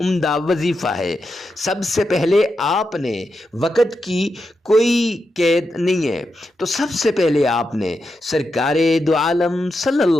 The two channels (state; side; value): normal; both; correlation 0.87